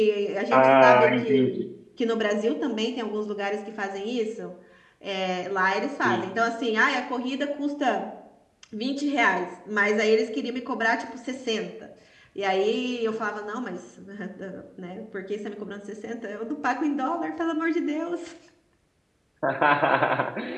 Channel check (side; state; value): both; identical; correlation 1.00